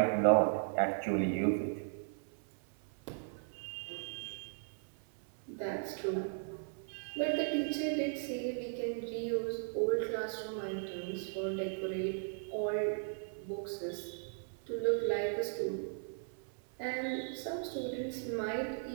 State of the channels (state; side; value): silent; left; 53 dB below the other